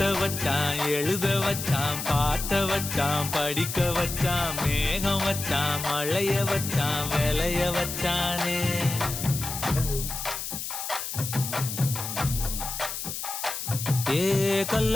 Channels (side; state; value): left; noise; hiss, 5 dB below the sound